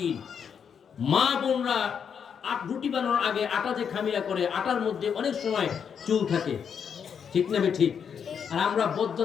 মা বোনরা রুটি বানানোর আগে আটা যে খামিরা করে, আটার মধ্যে অনেক সময় চুল থাকে, ঠিক না ঠিক? আর আমরা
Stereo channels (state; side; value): quieter; right; 7.3 dB